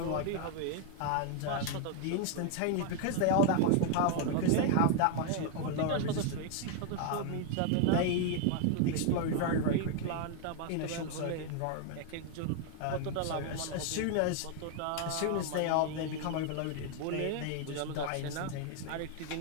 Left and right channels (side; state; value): both; different; correlation 0.00